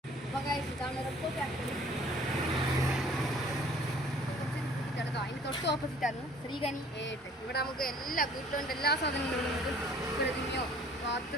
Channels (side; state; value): both; normal; correlation 0.53